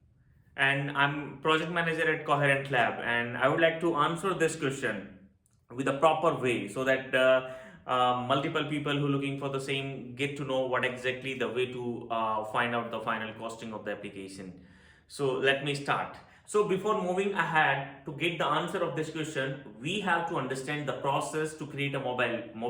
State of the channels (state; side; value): identical; both; correlation 1.00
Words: and I'm project manager at Coherent Lab and I would like to answer this question with a proper way so that multiple people who are looking for the same get to know what exactly the way to find out the final costing of the application. So let me start. So before moving ahead to get the answer of this question, we have to understand the process to create a